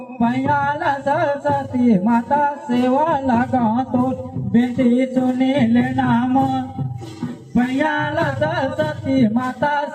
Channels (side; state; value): both; identical; correlation 1.00